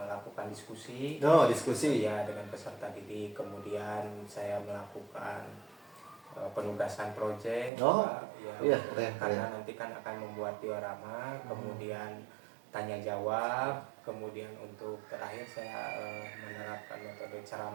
diskusi. Ya, dengan peserta didik. Kemudian saya melakukan penugasan proyek. Karena nanti kan akan membuat diorama. Kemudian tanya jawab, Kemudian untuk terakhir saya menerapkan metode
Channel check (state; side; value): drops out; left; at 7.7 s